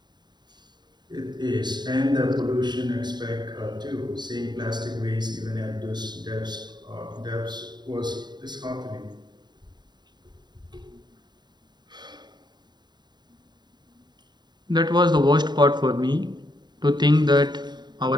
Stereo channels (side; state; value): left; late; 0.21 ms